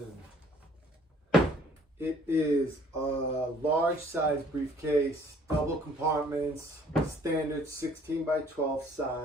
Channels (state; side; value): normal; both; correlation 0.57